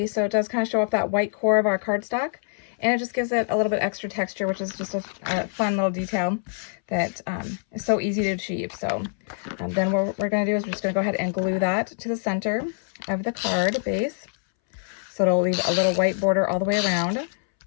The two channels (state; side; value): silent; right; 62 dB below the other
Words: So it does kind of show off that white core of our cardstock, and it just gives it a little bit extra texture, which is just a fun little detail that is so easy to achieve. So then what we're going to do is we're just going to go ahead and glue that to the center of the card base. So it'll leave a little white border all the way around.